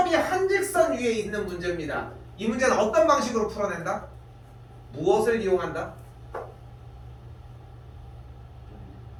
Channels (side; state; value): both; identical; correlation 1.00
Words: 한 직선 위에 있는 문제입니다. 이 문제는 어떤 방식으로 풀어낸다? 무엇을 이용한다?